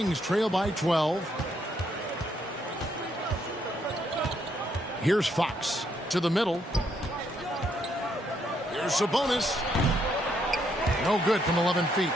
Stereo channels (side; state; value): both; normal; correlation 0.74